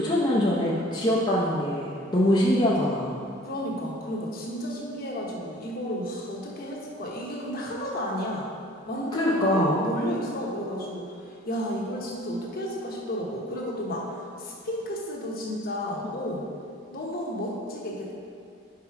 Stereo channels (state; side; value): normal; both; correlation 0.50